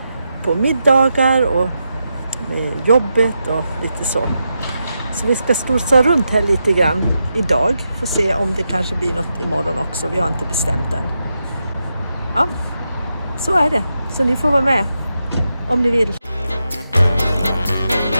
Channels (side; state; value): both; inverted; correlation -0.86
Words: på middagar och med jobbet och lite så. Så vi ska storsa runt här lite grann idag. Får se om det kanske blir något imorgon också. Vi har inte bestämt än. Ja, så är det. Så ni får vara med om ni vill.